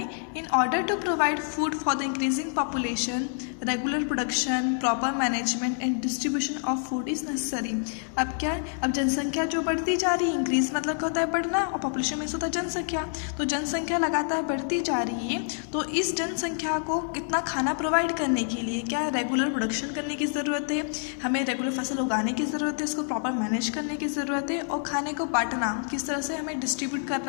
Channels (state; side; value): silent; right; 60 dB below the other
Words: In order to provide food for the increasing population regular production proper management and distribution of food is necessary. अब क्या है, अब जनसंख्या जो बढ़ती जा रही है, इंक्रीज मतलब क्या होता है बढ़ना, और पॉपुलेशन मीन्स होता है जनसंख्या। तो जनसंख्या लगातार बढ़ती जा रही है, तो इस जनसंख्या को कितना खाना प्रोवाइड करने के लिए क्या है रेगुलर प्रोडक्शन करने की ज़रूरत है, हमें रेगुलर फसल उगाने की ज़रूरत है, इसको प्रॉपर मैनेज करने की ज़रूरत है, और खाने को बांटना किस तरह से हमें डिस्ट्रीब्यूट